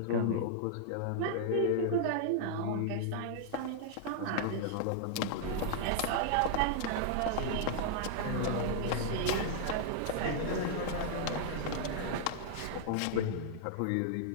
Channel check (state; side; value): different; both; correlation -0.01